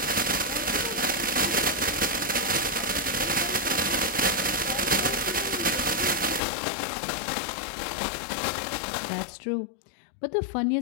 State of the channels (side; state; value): right; drops out; at 6.4 s